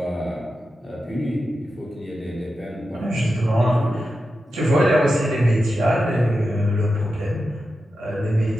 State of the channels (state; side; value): normal; both; correlation 0.90